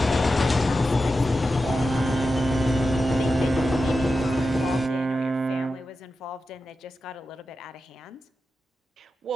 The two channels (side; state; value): both; normal; correlation 0.91